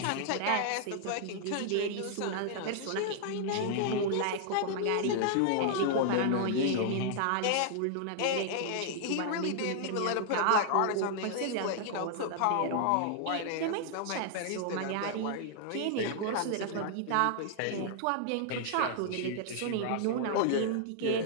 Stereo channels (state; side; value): different; both; correlation -0.01